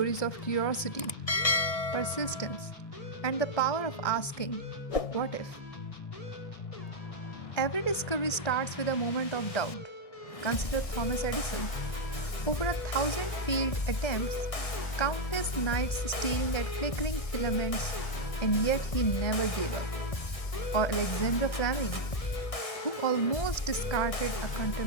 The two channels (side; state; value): right; late; 1.6 ms